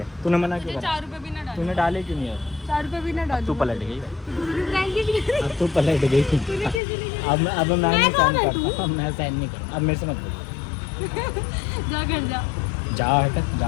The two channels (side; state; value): right; drops out; at 6.8 s